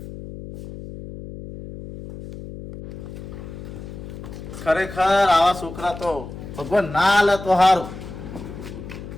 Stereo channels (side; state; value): left; noise; hum, 12 dB below the sound